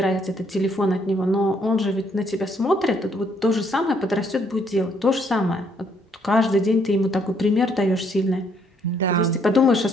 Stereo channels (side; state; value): both; normal; correlation 0.69